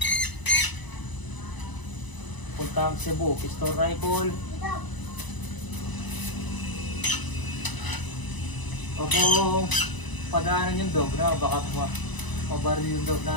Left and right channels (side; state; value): right; late; 1.0 ms